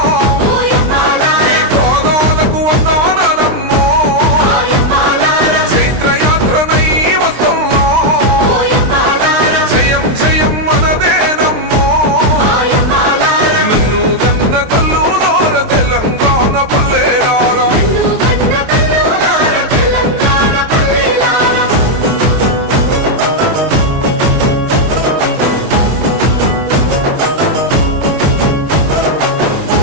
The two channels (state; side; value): late; left; 23 ms